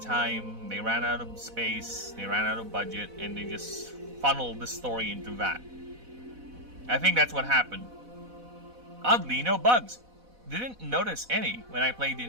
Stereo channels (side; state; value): left; late; 4.1 ms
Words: time, they ran out of space, they ran out of budget, and they just funneled the story into that. I think that's what happened. Oddly, no bugs. Didn't notice any when I played the